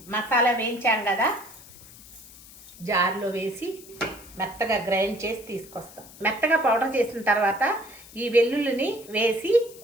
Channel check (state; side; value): noise; left; hiss, 20 dB below the sound